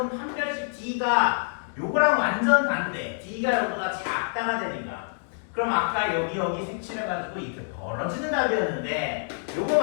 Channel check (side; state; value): right; silent; 61 dB below the other